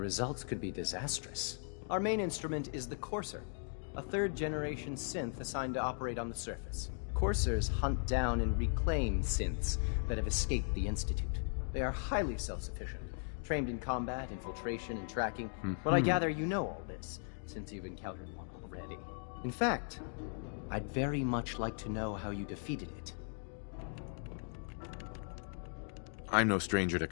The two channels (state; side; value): silent; right; 53 dB below the other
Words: could be disastrous. Our main instrument is the Courser, a third-generation synth assigned to operate on the surface. Coursers hunt down and reclaim synths that have escaped the Institute. They are highly self-sufficient, trained in combat, infiltration, and tracking. But I gather you know all this, since you've encountered one already. In fact, I'd very much like to know how you defeated it. I'm no stranger to